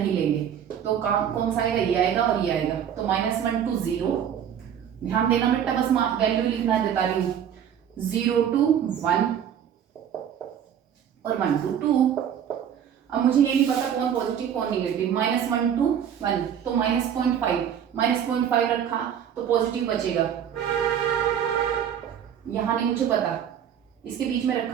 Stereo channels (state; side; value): quieter; left; 9.0 dB